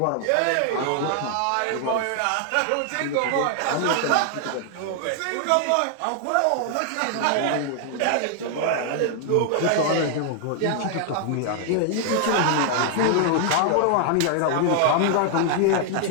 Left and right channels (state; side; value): different; both; correlation 0.00